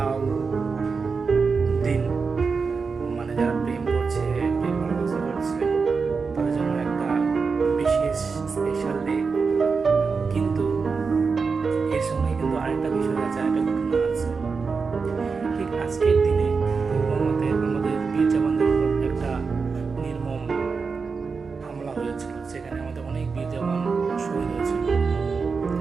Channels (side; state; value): left; quieter; 5.0 dB